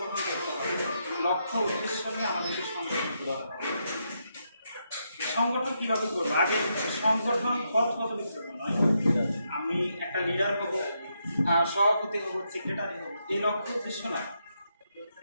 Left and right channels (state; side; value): inverted; both; correlation -0.81